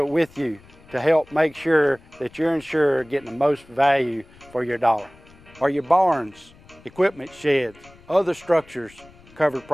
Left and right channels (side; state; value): left; noise; rumble, 25 dB below the sound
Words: with you to help make sure that you're insured getting the most value for your dollar. Are your barns, equipment sheds, other structures covered